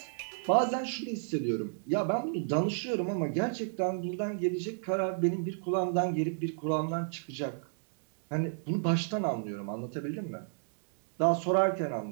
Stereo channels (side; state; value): left; silent; digital silence